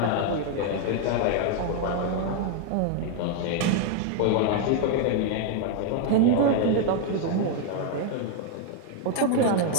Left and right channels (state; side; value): different; both; correlation 0.00